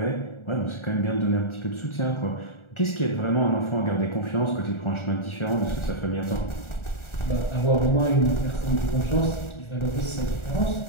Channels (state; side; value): late; right; 1.4 ms